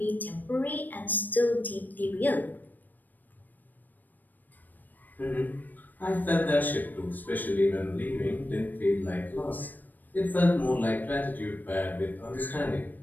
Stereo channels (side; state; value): right; late; 0.087 ms